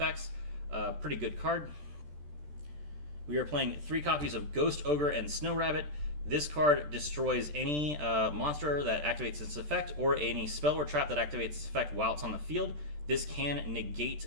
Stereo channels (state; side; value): late; left; 13 ms